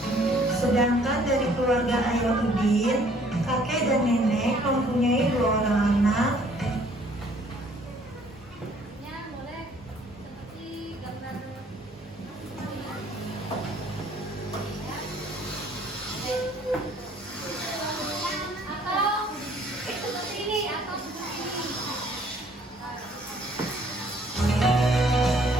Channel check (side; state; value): both; normal; correlation 0.60